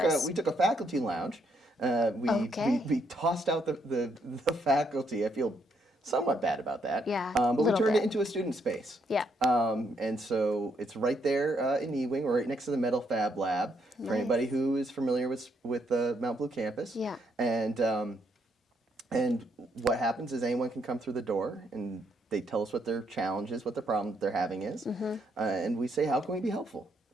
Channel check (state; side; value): normal; both; correlation 0.74